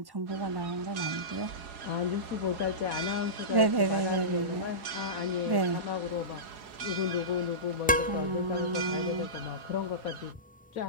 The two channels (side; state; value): both; normal; correlation -0.19